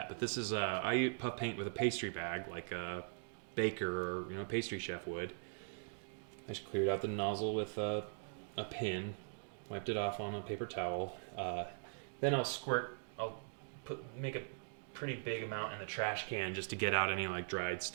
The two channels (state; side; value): silent; left; digital silence